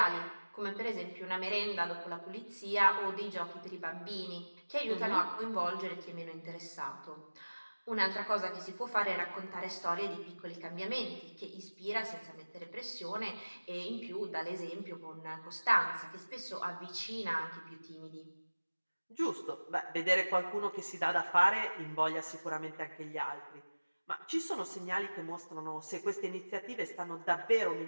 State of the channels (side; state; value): both; inverted; correlation -1.00